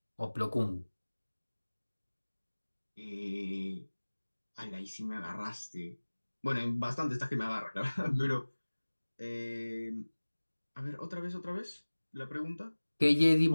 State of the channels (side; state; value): both; inverted; correlation -1.00